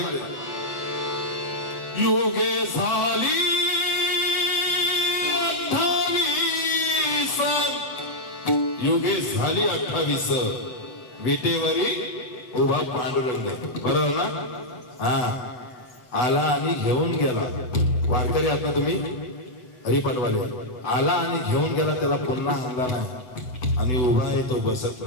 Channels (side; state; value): right; late; 8.0 ms